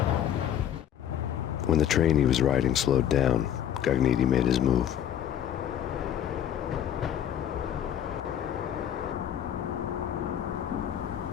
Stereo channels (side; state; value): right; quieter; 10.0 dB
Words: When the train he was riding slowed down, Gognitti made his move.